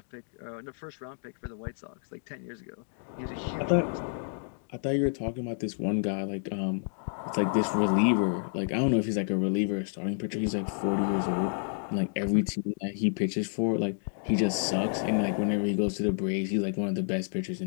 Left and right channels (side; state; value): right; silent; digital silence